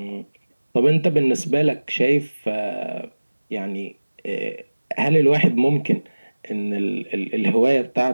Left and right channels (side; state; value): both; inverted; correlation -1.00